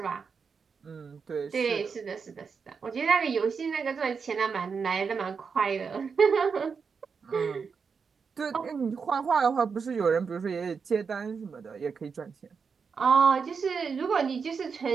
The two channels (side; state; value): left; quieter; 5.7 dB